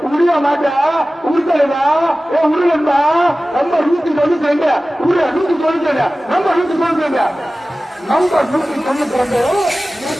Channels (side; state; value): both; normal; correlation 0.96